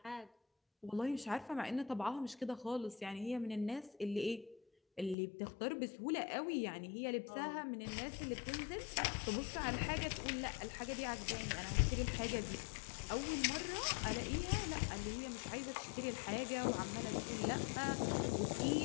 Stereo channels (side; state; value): right; drops out; at 5.2 s